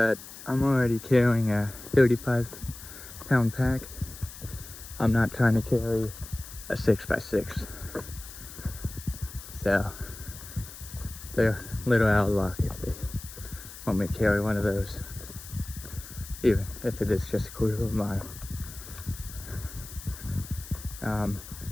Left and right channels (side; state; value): left; noise; hiss, 14 dB below the sound